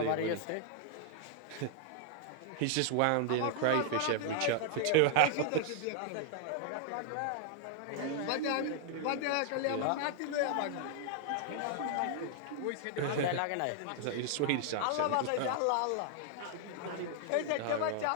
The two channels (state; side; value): different; both; correlation -0.01